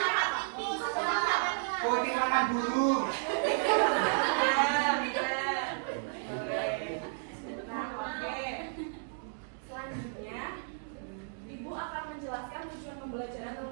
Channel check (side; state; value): left; silent; digital silence